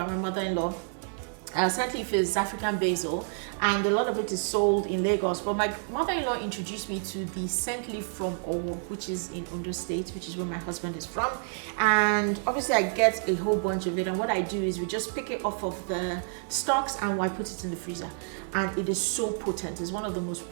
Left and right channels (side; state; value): left; silent; 59 dB below the other